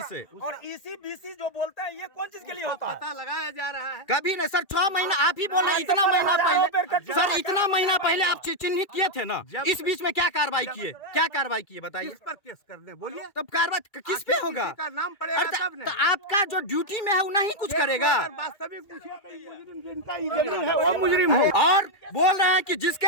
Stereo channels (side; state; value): right; late; 2.2 ms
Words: से। और EC-BC जो बोलते हैं, ये कौन चीज के लिए होता है? पता लगाया जा रहा है। कभी नहीं सर, 6 महीना आप ही बोल रहे हैं। इतना महीना पहले सर, इतना महीना पहले आप चिन्हित किए थे ना, इस बीच में क्या कार्रवाई किए? क्या कार्रवाई किए बताइए? किस पर केस करने बोलिए? तब कार्रवाई किस पे होगा? किसी का नाम पड़ेगा तब तो आपका जो ड्यूटी में है वो नहीं कुछ करेगा। वास्तविक पूछिए तो मुजरिम जिनका ये जमीन है वो मुजरिम हो। और बोल रहे हैं कि